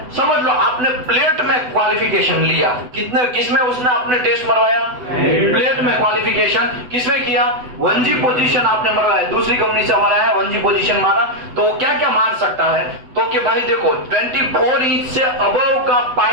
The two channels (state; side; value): late; left; 8.0 ms